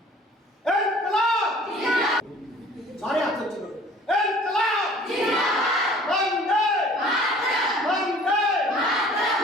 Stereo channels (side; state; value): both; normal; correlation 0.50